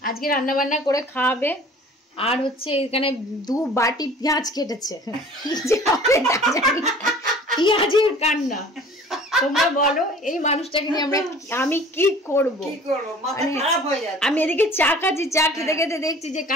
রান্না বান্না করে খাওয়াবে। আর হচ্ছে এখানে 2 বাটি পেঁয়াজ কেটেছে, পেঁয়াজের কান্না। তোমরা বলো এই মানুষটাকে নিয়ে আমি কি করবো? আমি এদিকে চা খাচ্ছি, চা খেতে খেতে দেখছি যে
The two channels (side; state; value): both; normal; correlation 0.47